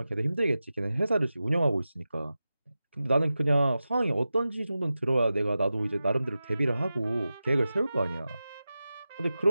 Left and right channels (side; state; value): both; inverted; correlation -0.93